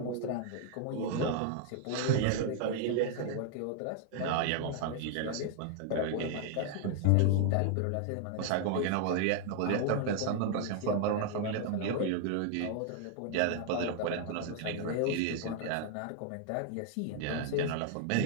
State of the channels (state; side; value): different; both; correlation 0.00